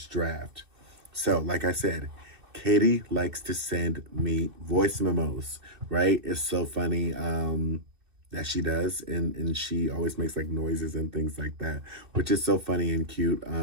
draft. So, like I said, Katie likes to send me voice memos, right? It's so funny that she does. And she always makes like noises and things like that, which is so funny and cute.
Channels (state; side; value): late; left; 2.6 ms